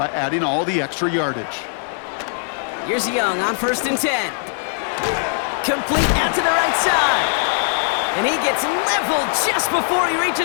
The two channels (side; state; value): right; silent; 66 dB below the other